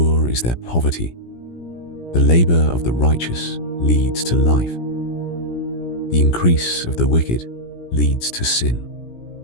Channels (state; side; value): late; right; 17 ms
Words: is their poverty. The labor of the righteous leads to life. The increase of the wicked leads to sin.